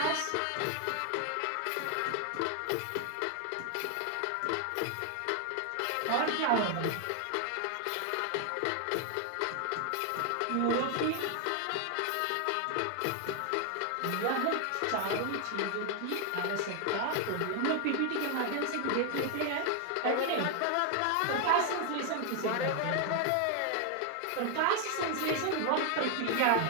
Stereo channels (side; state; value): both; different; correlation 0.00